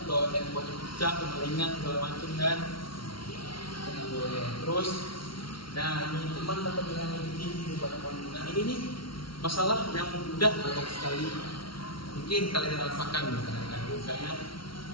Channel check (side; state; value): right; late; 0.74 ms